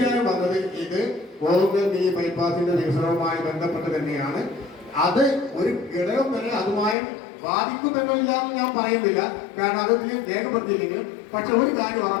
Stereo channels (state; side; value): drops out; right; at 7.0 s